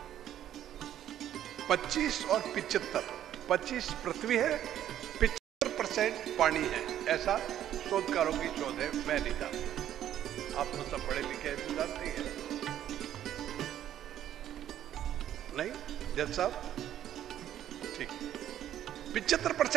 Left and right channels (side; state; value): left; quieter; 11.3 dB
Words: 25 और 75। 25 पृथ्वी है, 75% पानी है, ऐसा शोधकारों की शोध है, मैं नहीं जानता। आप तो सब पढ़े लिखे हैं, तो जानते हैं नहीं जज साहब? ठीक,